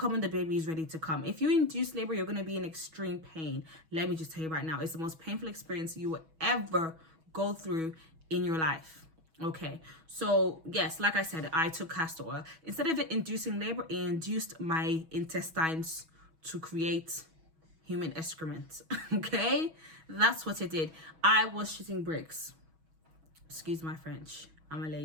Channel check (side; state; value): left; late; 6.2 ms